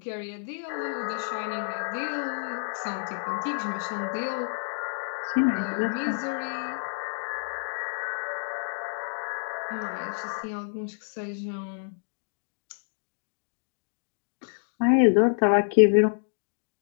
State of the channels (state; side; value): silent; right; digital silence